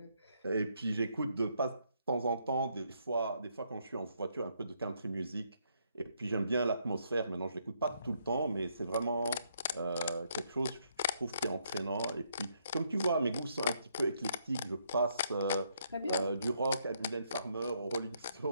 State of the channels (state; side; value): inverted; both; correlation -0.73